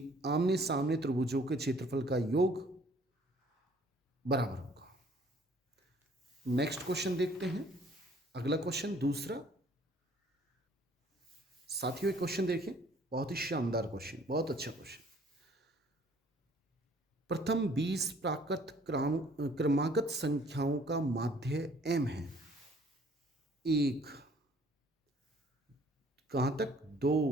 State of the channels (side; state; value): both; normal; correlation 0.58